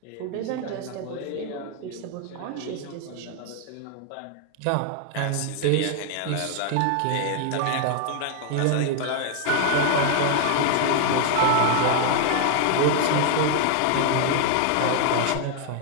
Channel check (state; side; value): different; both; correlation 0.00